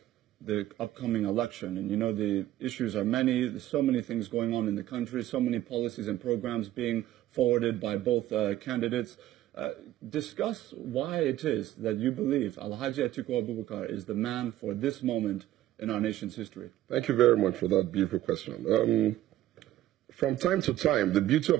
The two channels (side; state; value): left; quieter; 14.0 dB